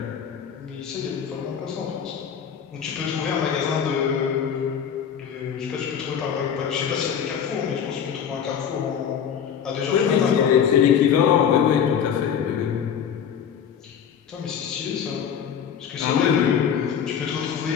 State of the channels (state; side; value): quieter; right; 8.1 dB